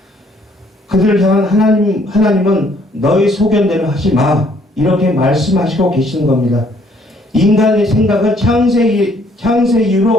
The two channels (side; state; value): both; normal; correlation 0.64